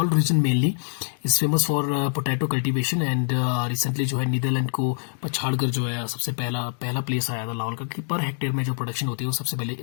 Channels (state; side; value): silent; right; digital silence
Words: region mainly is famous for potato cultivation. And recently जो है नीदरलैंड को पछाड़ कर जो है सबसे पहला प्लेस आया था लाहौल का, कि पर हेक्टेयर में जो प्रोडक्शन होती है वो सबसे